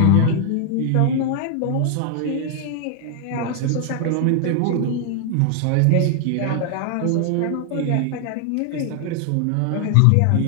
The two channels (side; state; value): both; different; correlation 0.00